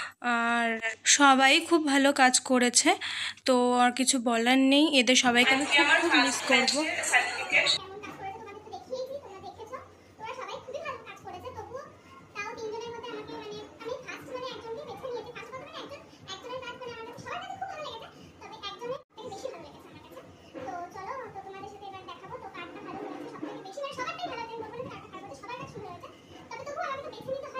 আর সবাই খুব ভালো কাজ করেছে, তো আর কিছু বলার নেই। এদের সবাইকে আমি খুব খুব মিস করবো।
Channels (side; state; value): both; identical; correlation 1.00